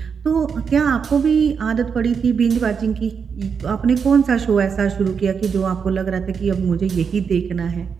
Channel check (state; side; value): quieter; left; 6.3 dB